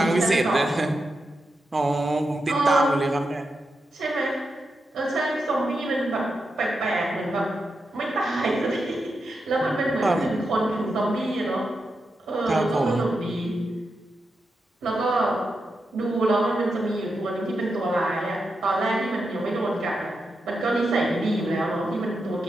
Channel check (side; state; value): both; normal; correlation 0.87